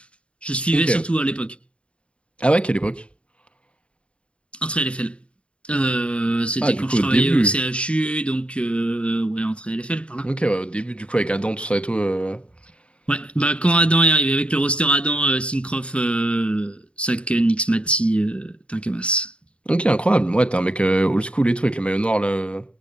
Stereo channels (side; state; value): right; late; 0.059 ms